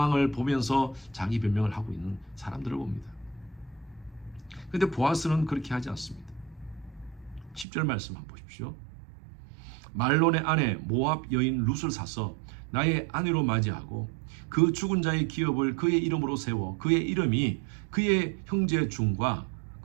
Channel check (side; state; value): left; drops out; at 7.7 s